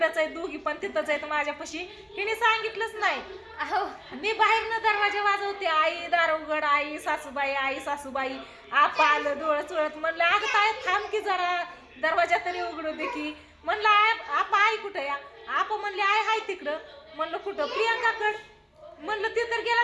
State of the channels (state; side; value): identical; both; correlation 1.00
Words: आहेत दोघी पण तिथंच आहेत माझ्यापाशी हिने सांगितलंच नाही अहो मी बाहेरनं दरवाजा वाजवते आई दार उघड आई सासूबाई आपा आलं डोळं चोळत म्हणलं अगं काय थांब की जरा दरवाजा तरी उघडू दे की म्हणलं आपा आई कुठं या आपा म्हणले आय हाय तिकडं म्हणलं कुठं प्रियंकाकड म्हणलं ते तर गेला